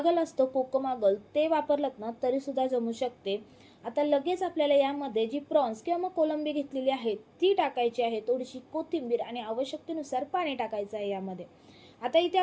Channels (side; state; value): both; identical; correlation 1.00